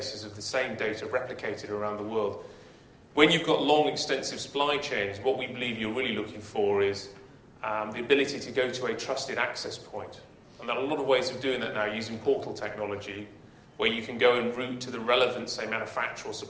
of the same data replicated around the world. When you've got long, extensive supply chains, what we believe you're really looking for is the ability to go to a trusted access point. And there are a lot of ways of doing that now using portal technology, where you can go and route to the relevant, say, manufacturer or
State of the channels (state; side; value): identical; both; correlation 1.00